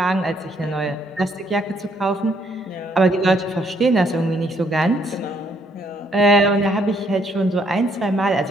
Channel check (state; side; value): normal; both; correlation 0.69